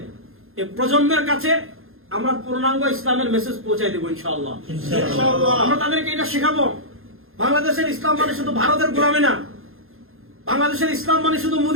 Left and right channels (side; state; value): left; late; 0.61 ms